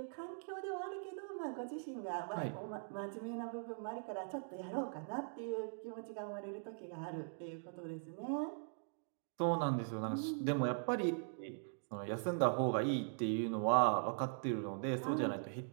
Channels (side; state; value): left; silent; digital silence